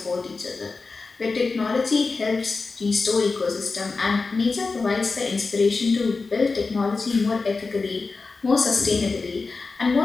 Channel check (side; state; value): right; quieter; 4.1 dB